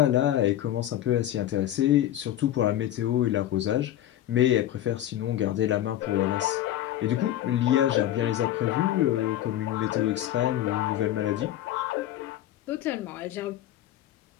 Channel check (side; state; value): right; quieter; 12.6 dB